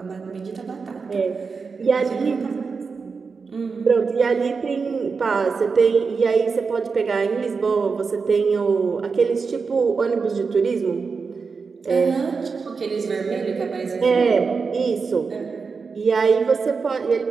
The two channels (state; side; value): quieter; left; 5.0 dB